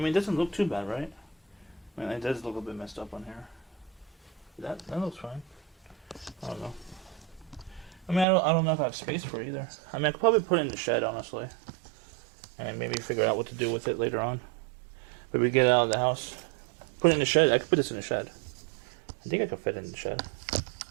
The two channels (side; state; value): left; drops out; at 8.2 s